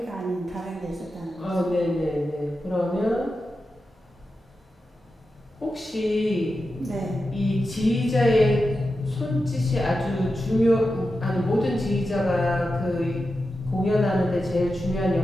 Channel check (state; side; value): normal; both; correlation 0.90